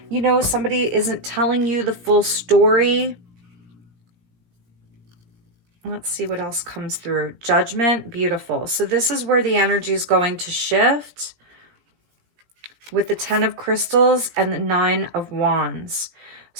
You know, somebody isn't telling you the full story. Let's see what else comes through. Judgment, beautiful. So this is where the energy is going to shift with the 10 of Crystals and the 9 of Wands.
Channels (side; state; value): left; late; 17 ms